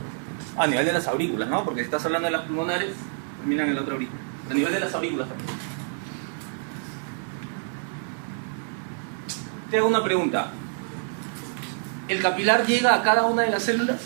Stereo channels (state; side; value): silent; left; digital silence